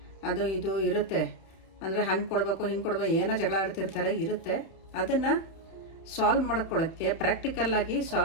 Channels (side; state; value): right; late; 31 ms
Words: ಅದು ಇದು ಇರುತ್ತೆ. ಅಂದರೆ ಹಂಗೆ ಕೊಡಬೇಕು, ಹಿಂಗೆ ಕೊಡಬೇಕು, ಏನೋ ಜಗಳ ಆಡ್ತಿರ್ತಾರೆ, ಇರುತ್ತೆ. ಅದನ್ನು ಸಾಲ್ವ್ ಮಾಡ್ಕೊಳ್ಳೋಕ್ಕೆ, ಪ್ರಾಕ್ಟಿಕಲ್ಲಾಗಿ